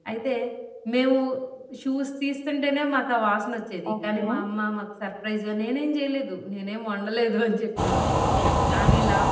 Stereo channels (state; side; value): identical; both; correlation 1.00